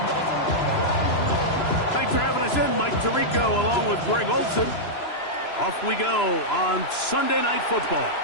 Tirico along with Greg Olson. Off we go on Sunday Night Football.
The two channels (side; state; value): right; late; 3.0 ms